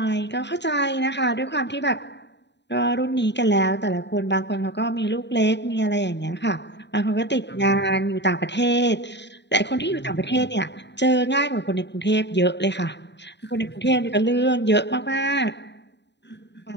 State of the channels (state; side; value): late; right; 0.51 ms